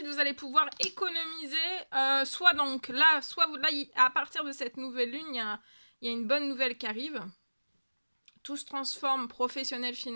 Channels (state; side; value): inverted; both; correlation -1.00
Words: vous allez pouvoir économiser. Soit donc là, à partir de cette nouvelle lune, il y a une bonne nouvelle qui arrive. Tout se transforme, professionnel,